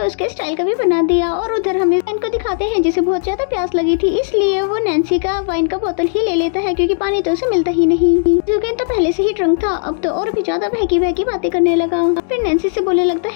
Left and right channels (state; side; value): silent; right; digital silence